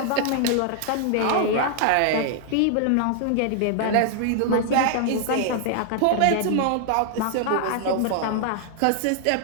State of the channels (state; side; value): different; both; correlation 0.00